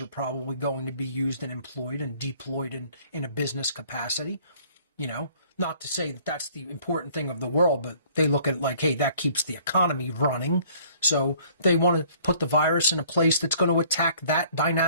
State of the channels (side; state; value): both; inverted; correlation -0.58